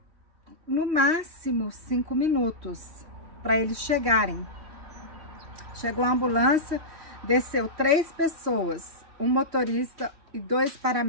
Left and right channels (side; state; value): left; late; 3.0 ms